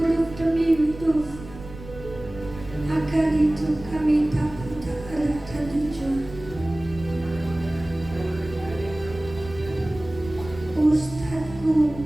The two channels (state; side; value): noise; right; rumble, 15 dB below the sound